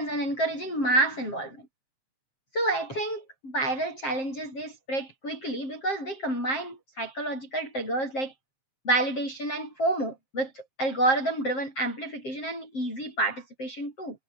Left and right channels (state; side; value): late; right; 7.5 ms